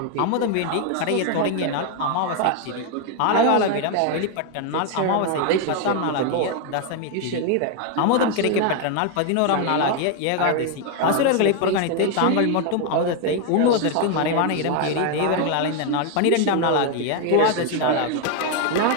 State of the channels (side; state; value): both; different; correlation 0.01